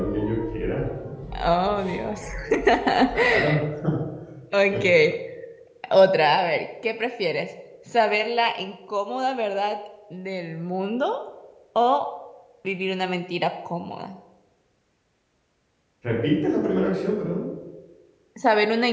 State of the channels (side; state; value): both; identical; correlation 1.00